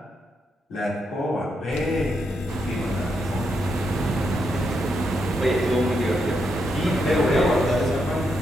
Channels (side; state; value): both; normal; correlation 0.81